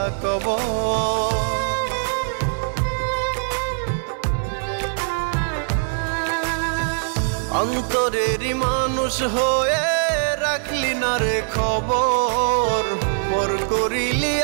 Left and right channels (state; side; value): silent; left; 64 dB below the other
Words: কবর। অন্তরেরই মানুষ হয়ে রাখলি না রে খবর, পর করিলি